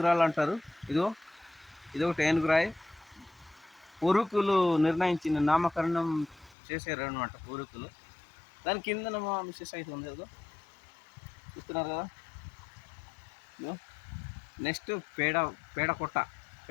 అంటారు. ఇదొకటి ఏనుగురాయి. పూర్వీకులు నిర్ణయించిన నామకరణం చేశారు అనమాట పూర్వీకులు. దాని కింద మా మిస్సెస్ అయితే ఉంది కదా చూస్తున్నారు కదా. నెక్స్ట్ పేడకొట్ట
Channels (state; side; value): drops out; right; at 6.6 s